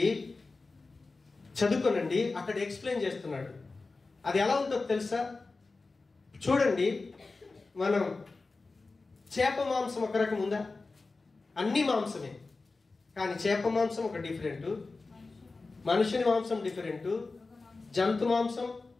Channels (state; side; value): quieter; right; 3.7 dB